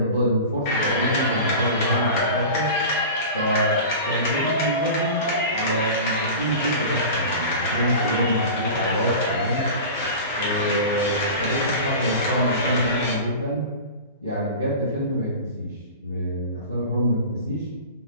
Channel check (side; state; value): both; inverted; correlation -0.33